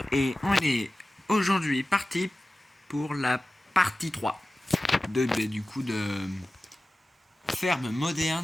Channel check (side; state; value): both; normal; correlation 0.96